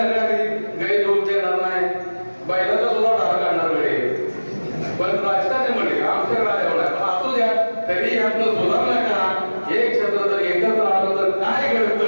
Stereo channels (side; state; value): both; inverted; correlation -1.00